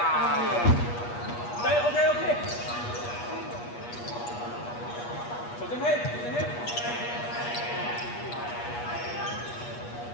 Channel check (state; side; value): late; right; 8.4 ms